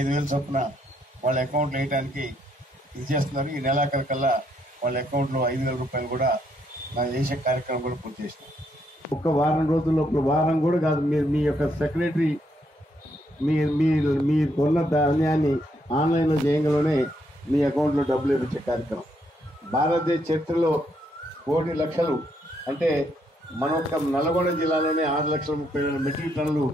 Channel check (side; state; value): both; normal; correlation 0.74